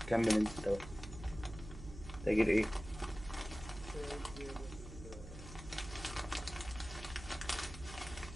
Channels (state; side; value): noise; right; hum, 12 dB below the sound